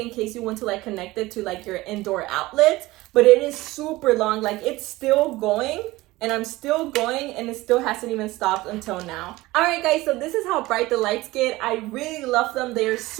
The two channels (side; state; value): left; quieter; 19.2 dB